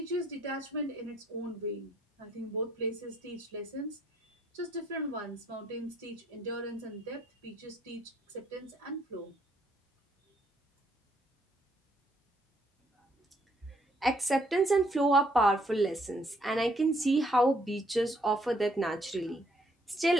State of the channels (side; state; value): both; normal; correlation 0.69